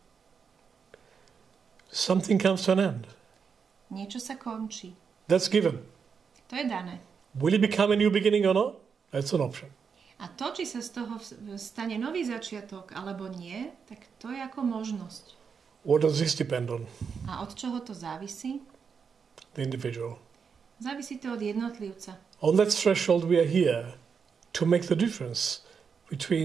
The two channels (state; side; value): quieter; left; 6.2 dB